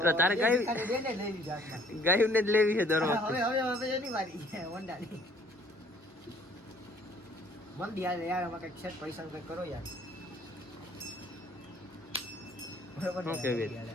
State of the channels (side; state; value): both; normal; correlation 0.59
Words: તારે બે ગાય- ભિખારી બેને લઈ લીધી હાથમાં. ગાયું ને જ લેવી છે દર હવે વખતે. હવે હવે એની વારી છે હોન્ડાની. મંદી હાલે યાર, આમાં કંઈક છે પૈસાનું કંઈક કરો યાર. બરોબર ને? શું કહેવી? મંદી હાલે.